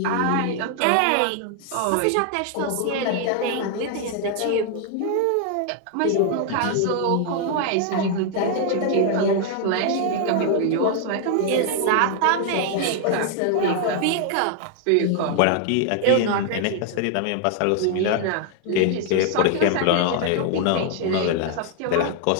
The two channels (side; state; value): both; different; correlation 0.00